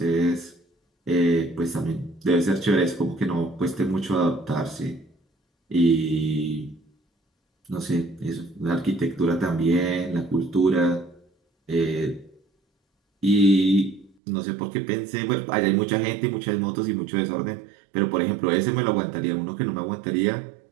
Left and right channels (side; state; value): left; drops out; at 14.1 s